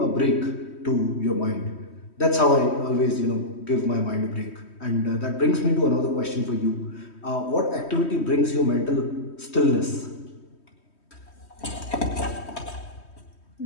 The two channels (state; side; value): late; right; 3.1 ms